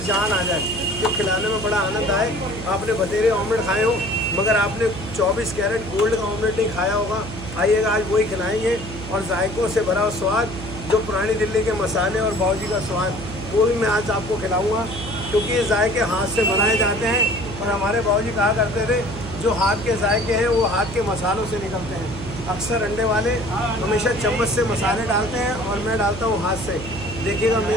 जान आ जाए, जो खिलाने में बड़ा आनंद आए। आपने बतेरे ऑमलेट खाए हो मगर आपने 24 कैरेट गोल्ड का ऑमलेट नहीं खाया होगा। आइएगा आज वही खिलाएंगे और जायकों से भरा हुआ स्वाद जो पुरानी दिल्ली के मसाले और बावर्ची का स्वाद, वो भी मैं आज आपको खिलाऊँगा। क्योंकि ये जायके हाथ से बनाए जाते हैं। और हमारे बाबूजी कहा करते थे जो हाथ के जायके हैं वो हाथ के मसालों से निकलते हैं। अक्सर अंडे वाले हमेशा चम्मच से मसाले डालते हैं और मैं डालता हूँ हाथ से। देखिएगा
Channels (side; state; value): right; noise; hum, 10 dB below the sound